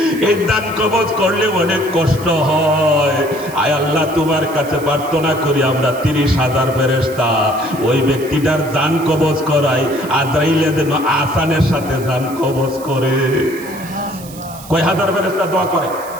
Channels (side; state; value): right; noise; hiss, 18 dB below the sound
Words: এই জান কবজ করলে অনেক কষ্ট হয়। আয় আল্লাহ তোমার কাছে প্রার্থনা করি আমরা 30,000 ফেরেশতা ওই ব্যক্তিটার জান কবজ করাই, আজরাইলে যেন আসানের সাথে জান কবজ করে। কয় হাজার ফেরেশতা দোয়া করে?